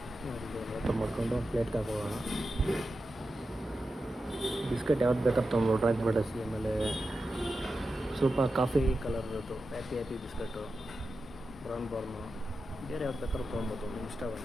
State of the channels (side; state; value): both; normal; correlation 0.91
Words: ಓಪನ್ ಮಾಡಿಕೊಂಡು ಪ್ಲೇಟ್ಗೆ ಹಾಕೋಣ. ಬಿಸ್ಕೆಟ್ ಯಾವ್ದು ಬೇಕಾದ್ರೆ ತೊಗೊಂಡು ಡ್ರಾಯಿಂಗ್ ಫ್ಯಾಂಟಸಿ, ಆಮೇಲೆ ಸ್ವಲ್ಪ ಕಾಫಿ ಕಲರ್ದು ಹ್ಯಾಪಿ ಬಿಸ್ಕಟ್ಟು, ಬ್ರೌನ್ ಬಾರ್ನು, ಬೇರೆ ಯಾವ್ದು ಬೇಕಾದ್ರೂ ತೊಗೊಬೋದು, ನಿಮ್ಗೆ